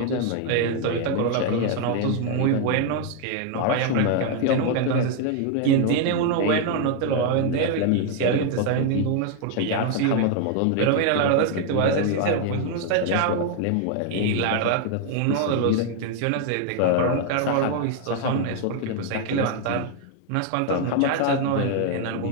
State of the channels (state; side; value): different; both; correlation 0.00